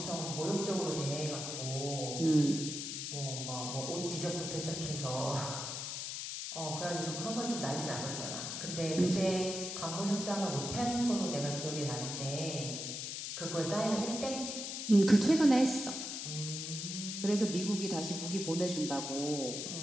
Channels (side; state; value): left; noise; hiss, 5 dB below the sound